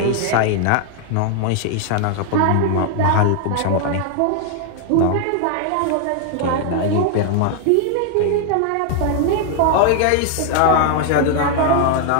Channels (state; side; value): different; both; correlation 0.00